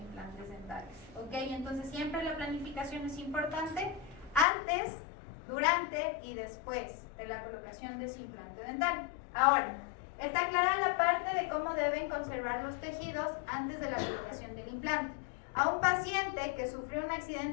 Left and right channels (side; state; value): right; drops out; at 4.5 s